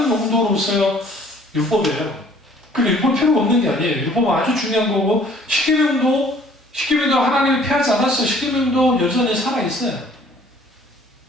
용도로서 율법이에요. 근데 율법 필요가 없는 게 아니에요. 율법은 아주 중요한 거고, 십계명도 하나님이 피하지 않았어요. 십계명도 여전히 살아있어요.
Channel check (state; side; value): normal; both; correlation 0.56